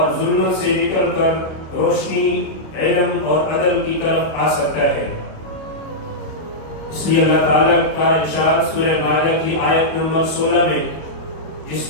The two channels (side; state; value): right; late; 25 ms